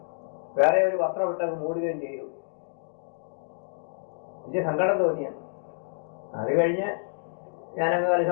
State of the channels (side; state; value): right; silent; digital silence